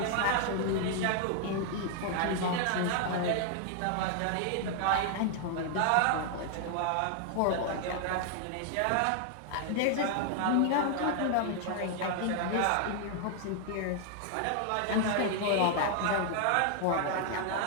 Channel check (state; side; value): different; both; correlation 0.00